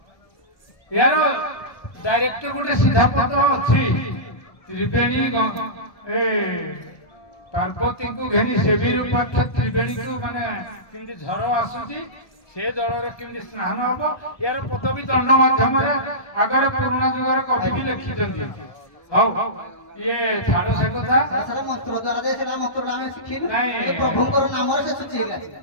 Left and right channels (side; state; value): right; late; 1.2 ms